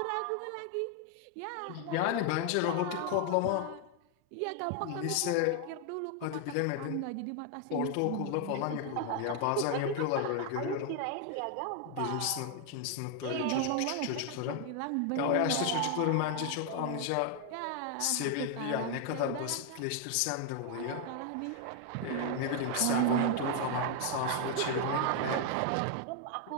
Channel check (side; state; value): both; different; correlation 0.00